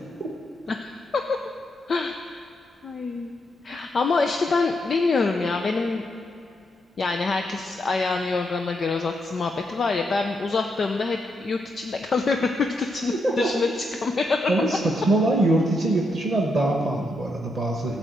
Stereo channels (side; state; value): both; normal; correlation 0.80